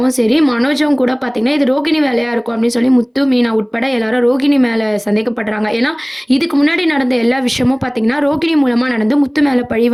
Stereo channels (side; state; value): both; identical; correlation 1.00